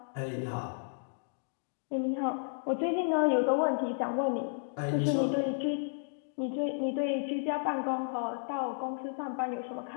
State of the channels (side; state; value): right; silent; digital silence